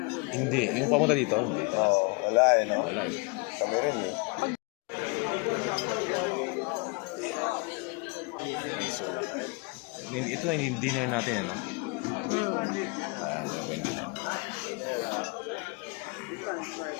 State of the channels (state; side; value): quieter; right; 29.6 dB